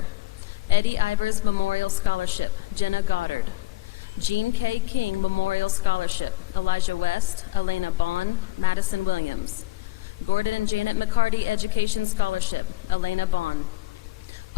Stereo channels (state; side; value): quieter; right; 17.1 dB